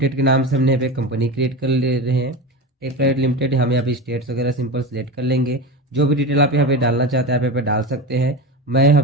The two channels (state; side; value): normal; both; correlation 0.24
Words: के नाम से हमने यहाँ पे कंपनी क्रिएट कर ले रहे हैं। टेक प्राइवेट लिमिटेड, हम यहाँ पे स्टेट्स वगैरह सिंपल सेलेक्ट कर लेंगे। जो भी डिटेल आप यहाँ पे डालना चाहते हैं आप यहाँ पे डाल सकते हैं। मैं यहाँ